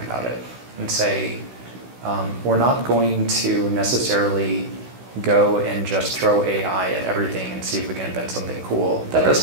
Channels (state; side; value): late; left; 16 ms